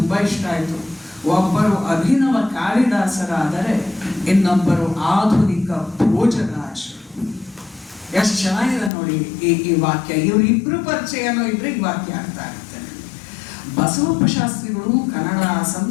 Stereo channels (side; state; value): right; drops out; at 8.9 s